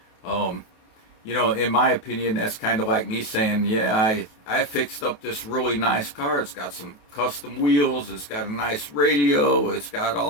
In my opinion, that's kind of like me saying, yeah, I fixed up this really nice car. It's got some custom wheels. It's got a nice radio. It's got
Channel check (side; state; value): right; late; 28 ms